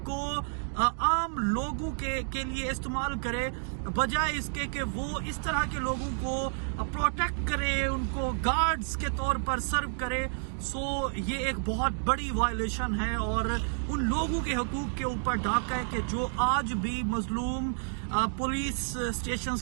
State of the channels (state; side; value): silent; left; digital silence